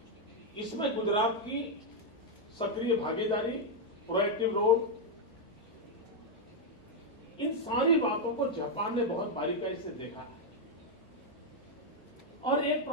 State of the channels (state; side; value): normal; both; correlation 0.00